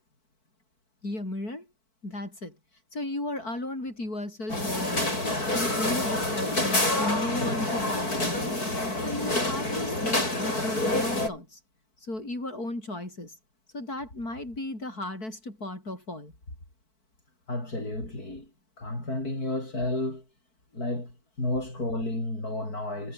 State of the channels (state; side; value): late; right; 4.6 ms